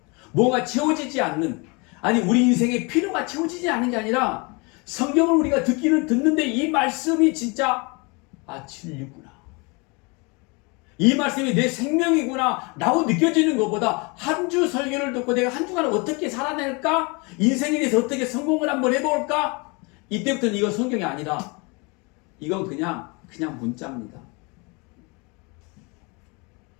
뭐가 채워지지 않는 아니 우리 인생의 필요가 채워지지 않는 게 아니라 성경을 우리가 듣는데 이 말씀이 진짜 진리구나. 이 말씀이 내 생명이구나 라고 느껴지는 것보다 한 주 설교를 듣고 내가 한 주간을 어떻게 살아낼까? 인생에 대해서 어떻게 성공을 한번 해볼까? 이때부터는 이건 성경이 아니라 이건 그냥 문자입니다.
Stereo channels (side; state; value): right; quieter; 29.4 dB